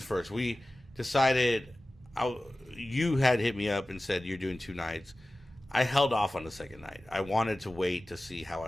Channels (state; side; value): normal; both; correlation 0.96